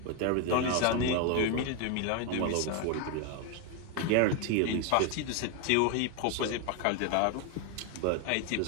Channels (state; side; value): different; both; correlation 0.01